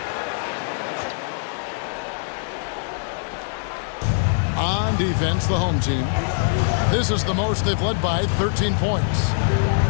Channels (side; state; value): right; silent; digital silence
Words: on defense, the home team. This is the most they've led by 13 points.